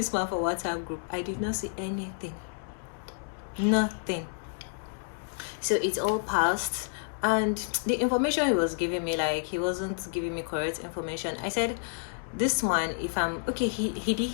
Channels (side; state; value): right; silent; digital silence